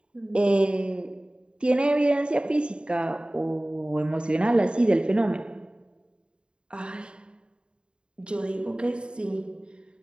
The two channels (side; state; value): left; late; 0.052 ms